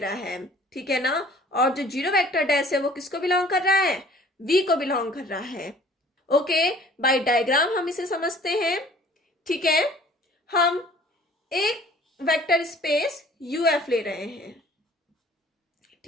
है. ठीक है ना, और जो जीरो वेक्टर डैश है वो किसको बिलोंग कर रहा है, V को बिलोंग कर रहा है. ओके, बाय डायग्राम हम इसे समझते हैं. ठीक है, हम एक वेक्टर स्पेस UF ले रहे हैं,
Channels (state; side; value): normal; both; correlation 0.52